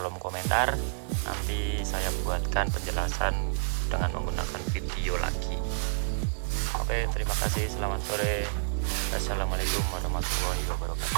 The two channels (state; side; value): silent; left; digital silence